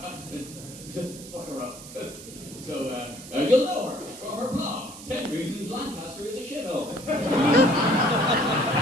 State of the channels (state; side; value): noise; right; hiss, 15 dB below the sound